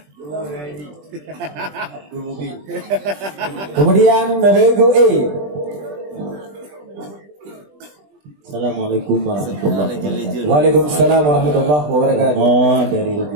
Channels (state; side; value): late; left; 20 ms